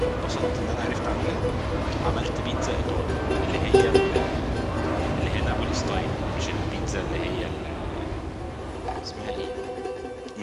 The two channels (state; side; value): identical; both; correlation 1.00